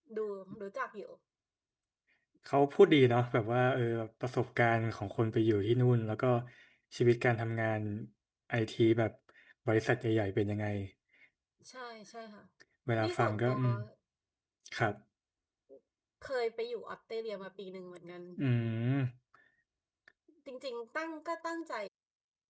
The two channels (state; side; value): identical; both; correlation 1.00